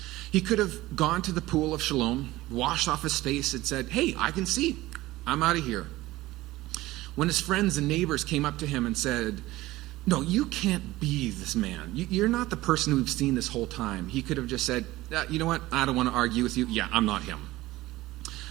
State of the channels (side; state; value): left; quieter; 17.8 dB